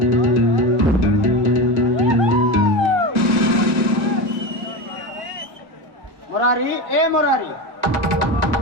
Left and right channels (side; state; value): left; late; 1.4 ms